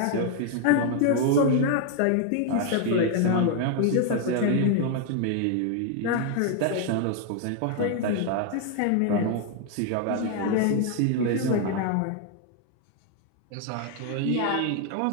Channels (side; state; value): both; different; correlation 0.00